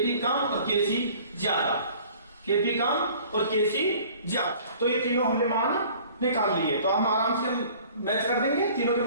कम और Kc ज्यादा। Kp कम और Kc ज्यादा। तो ये तीनों हमने मान निकाल लिए। तो हम आराम से मैच कर देंगे। तीनों के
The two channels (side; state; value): both; inverted; correlation -0.50